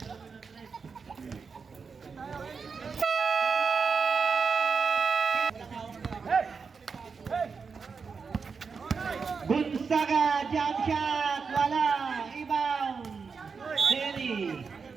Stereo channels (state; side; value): quieter; left; 5.3 dB